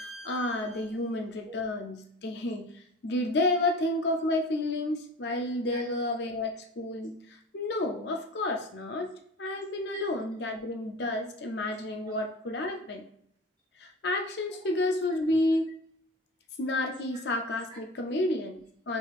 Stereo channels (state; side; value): normal; both; correlation 0.37